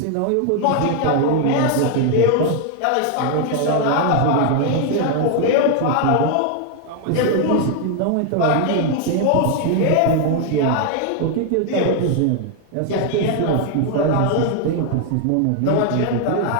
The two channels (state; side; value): different; both; correlation 0.00